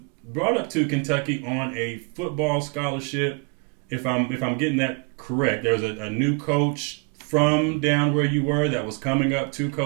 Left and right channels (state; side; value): quieter; left; 34.7 dB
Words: brought up to Kentucky on a football scholarship. If I'm getting that correct, there was a new coach from down where you were that was coming up to